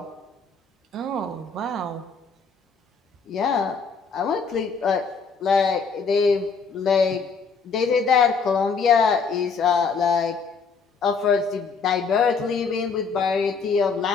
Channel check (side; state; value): right; quieter; 5.1 dB